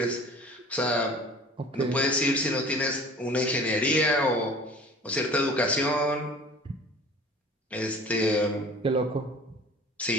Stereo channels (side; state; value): both; normal; correlation 0.45